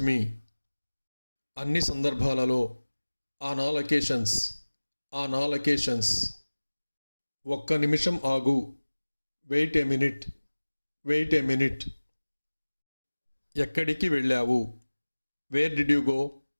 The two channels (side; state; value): both; inverted; correlation -1.00